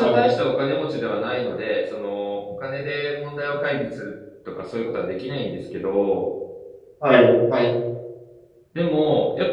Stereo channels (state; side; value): identical; both; correlation 1.00